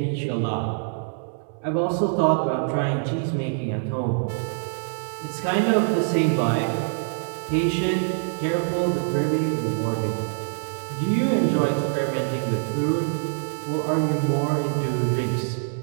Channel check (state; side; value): silent; left; 62 dB below the other